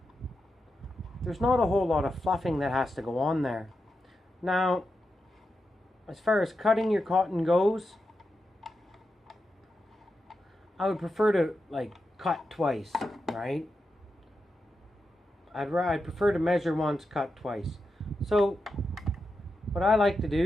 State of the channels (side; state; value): both; normal; correlation 0.88